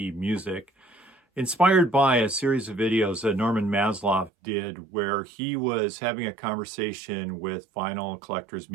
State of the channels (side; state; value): left; drops out; at 4.3 s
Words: music, inspired by a series of videos that Norman Maslow did where he was having a conversation with vinyl collectors,